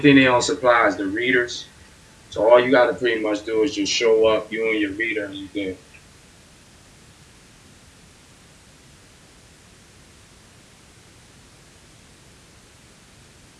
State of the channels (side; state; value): both; identical; correlation 1.00